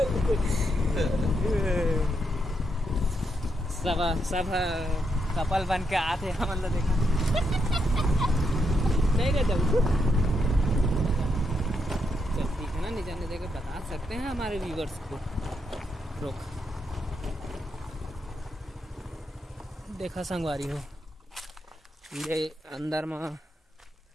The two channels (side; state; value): both; normal; correlation 0.80